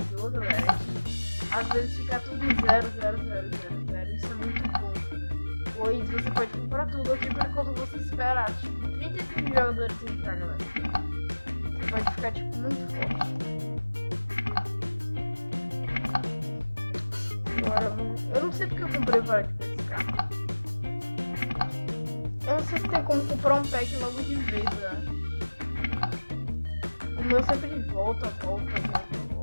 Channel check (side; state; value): both; inverted; correlation -1.00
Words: galera, é que às vezes fica tudo zero. Isso é muito bom. Pois você pode comprar tudo aqui por enquanto você esperar. Tipo, 35 jogadores entrar, galera. Você pode ficar, tipo, muito forte. Agora vamos... Eu não sei porque eu comprei o Varete pra esse carro. Eu não sei se tem como comprar um pack logo de vez, né? O meu sempre volta. Vou